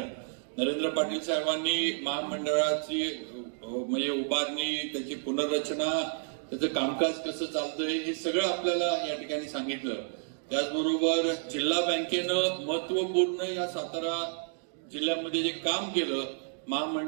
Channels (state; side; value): silent; left; digital silence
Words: नरेंद्र पाटील साहेबांनी महामंडळाची म्हणजे उभारणी, त्याची पुनर्रचना, त्याचं कामकाज कसं चालतंय हे सगळं आपल्याला या ठिकाणी सांगितलं. त्याचबरोबर जिल्हा बँकेनं महत्वपूर्ण या सातारा जिल्ह्यामध्ये जे काम केलं,